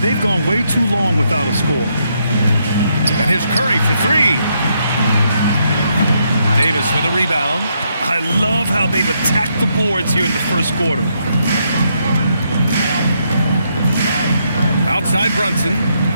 gone way too long without a score. And here's Curry for three. Davis with a rebound. I love how they've attacked the boards here in the first quarter. Outside Brunson.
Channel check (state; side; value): inverted; both; correlation -0.77